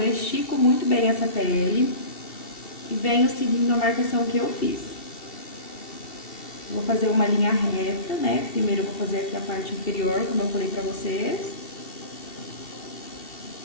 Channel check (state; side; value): late; right; 2.7 ms